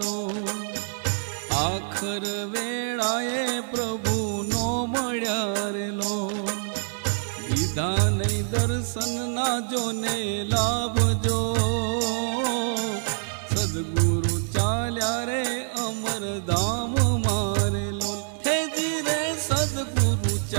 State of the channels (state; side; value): silent; left; digital silence